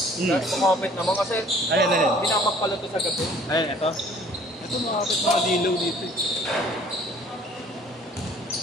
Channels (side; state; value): both; normal; correlation 0.54